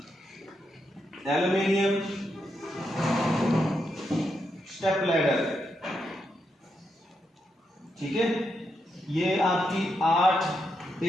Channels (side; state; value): both; normal; correlation 0.83